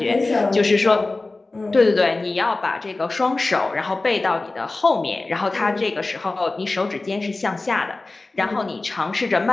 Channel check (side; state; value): right; quieter; 3.2 dB